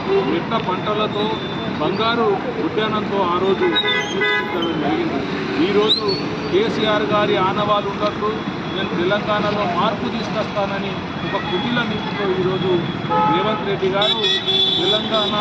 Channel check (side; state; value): both; identical; correlation 1.00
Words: మిట్ట పంటలతో, బంగారు ఉద్యానంతో ఆ రోజు సూచించడం జరిగింది. ఈరోజు కేసీఆర్ గారి ఆనవాళ్ళు ఉన్నట్లు నేను తెలంగాణలో మార్పు తీసుకొస్తానని ఒక కుటిల నీతితో ఈరోజు రేవంత్ రెడ్డి గారు